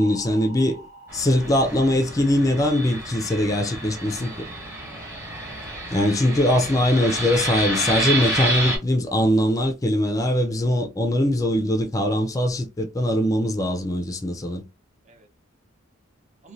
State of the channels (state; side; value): normal; both; correlation 0.69